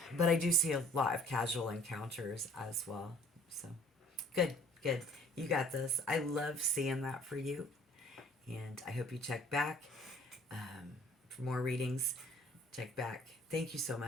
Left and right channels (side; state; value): both; normal; correlation 0.54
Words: But I do see a lot of casual encounters as well. So good, good. You got this. I love seeing that for you. And I hope you check back for more readings. Check back. Thank you so